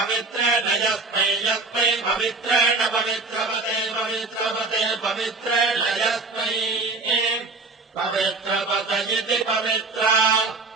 यस्मै यस्मै पवित्रेण पवित्रपते पवित्रपते पवित्रेण यस्मै पवित्रपते इति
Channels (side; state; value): left; quieter; 3.7 dB